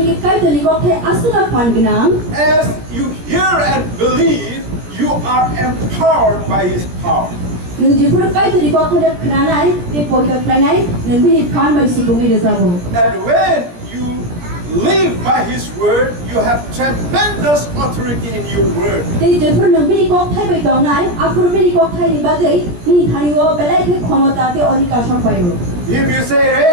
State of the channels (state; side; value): late; left; 17 ms